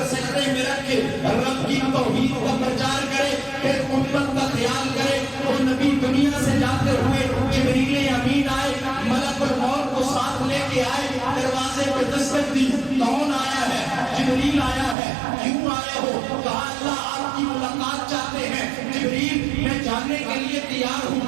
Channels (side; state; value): left; drops out; at 15.0 s